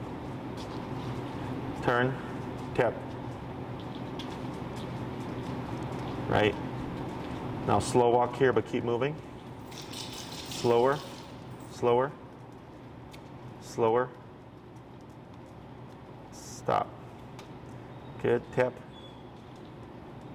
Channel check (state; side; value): identical; both; correlation 1.00